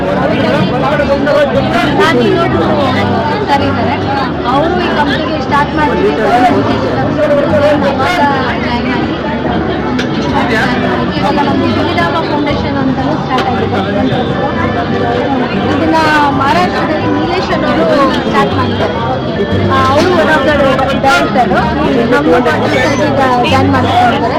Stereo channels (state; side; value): identical; both; correlation 1.00